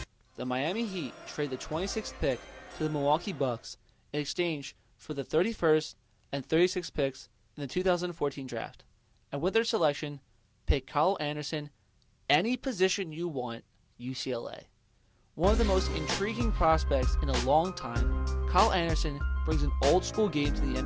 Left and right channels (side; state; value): both; identical; correlation 1.00